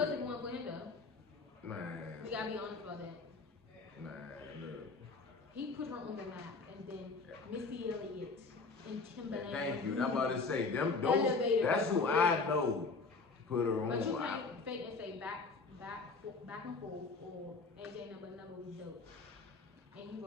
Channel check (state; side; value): quieter; right; 4.1 dB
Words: if we weren't for him though. Man. We gotta be honest about that. Man, look. He put her on the map, and then Missy Elliott and Timbaland. Thank you. I'm about to say them. That's who I know put her on. But you can't fake and say back and forth or AJ number was dope. And he